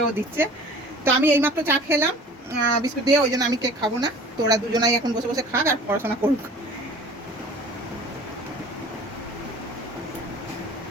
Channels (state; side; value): normal; both; correlation 0.45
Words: দিচ্ছে। তো আমি এইমাত্র চা খেলাম বিস্কুট দিয়ে, ওই জন্য আমি কেক খাবো না। তো ওরা দুজনাই এখন বসে বসে খাক আর পড়াশোনা করুক।